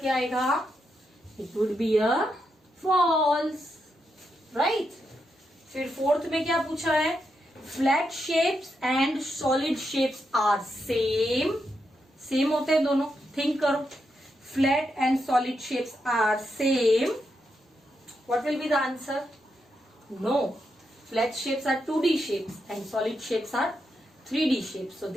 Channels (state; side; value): normal; both; correlation 0.84